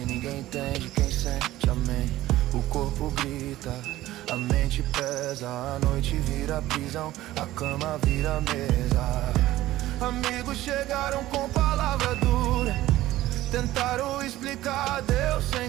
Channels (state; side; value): quieter; left; 15.7 dB